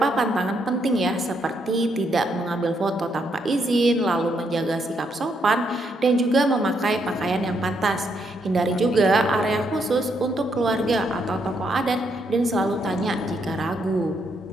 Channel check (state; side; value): normal; both; correlation 0.76